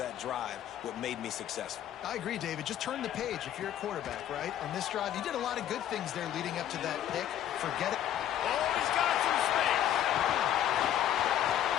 drive, what made me successful. I agree, David. Just turn the page if you're a quarterback, right? On this drive, you did a lot of good things there leading up to that pick. Forget it. Oh, he's got some space.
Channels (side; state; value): right; quieter; 11.2 dB